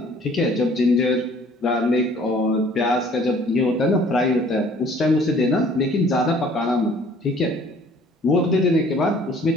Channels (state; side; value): normal; both; correlation 0.55